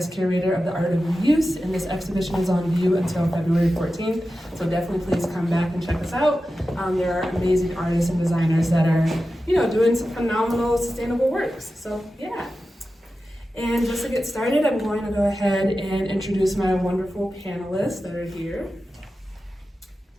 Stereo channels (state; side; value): normal; both; correlation 0.93